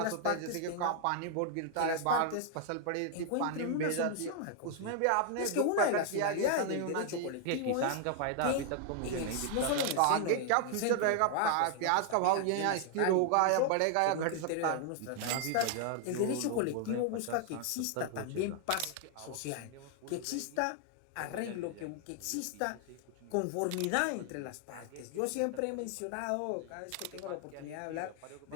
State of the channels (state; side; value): different; both; correlation 0.00